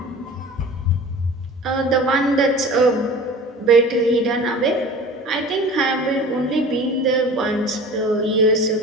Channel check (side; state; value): both; normal; correlation 0.40